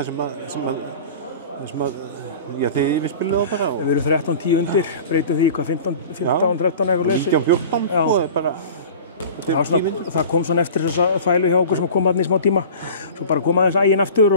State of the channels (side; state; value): both; inverted; correlation -0.38